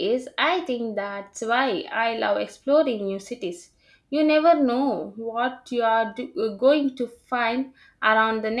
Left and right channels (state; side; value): identical; both; correlation 1.00